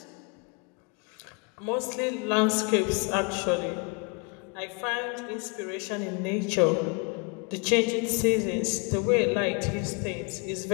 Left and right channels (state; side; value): quieter; right; 31.3 dB